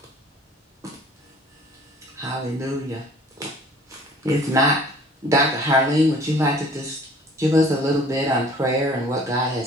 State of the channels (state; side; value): normal; both; correlation 0.51